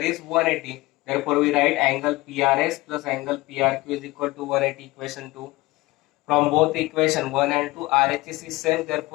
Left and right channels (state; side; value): quieter; right; 20.4 dB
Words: 180. Therefore, we write angle PRS plus angle PRQ is equal to 180 equation 2. From both equation 1 and 2, RHS is same.